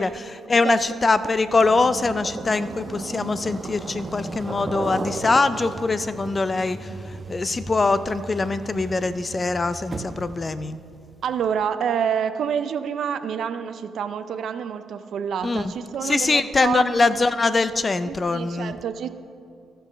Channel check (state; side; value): normal; both; correlation 0.87